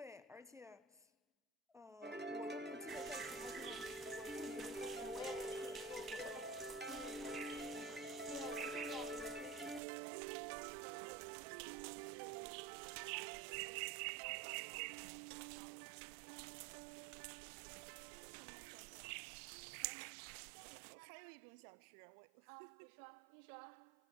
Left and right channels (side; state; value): left; drops out; at 9.8 s